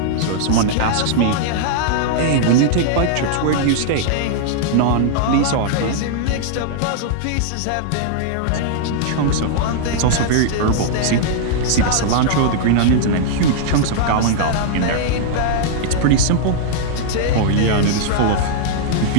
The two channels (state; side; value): different; both; correlation -0.01